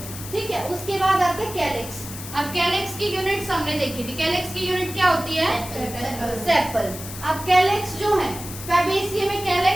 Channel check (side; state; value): left; noise; hiss, 11 dB below the sound